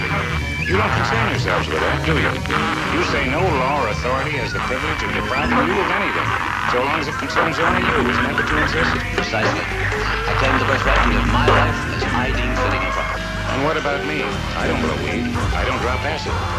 You don't concern yourselves with that, do you? You say no law or authority has the privilege of depriving you of anything, so long as it concerns only you. Isn't that what you insist? Precisely. I claim the birthright to live my life as I deem fitting and proper. And what about me? I don't blow weed. I don't drop acid.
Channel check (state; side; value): identical; both; correlation 1.00